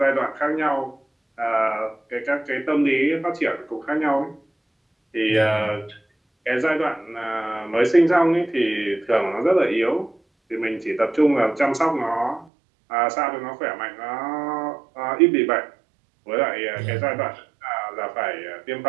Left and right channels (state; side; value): drops out; left; at 12.5 s